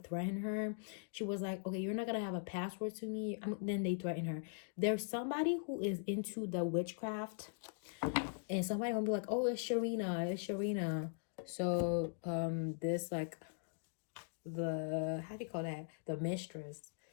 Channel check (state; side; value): silent; right; digital silence